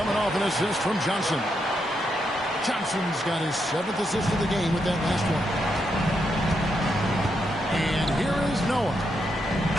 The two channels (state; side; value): normal; both; correlation 0.81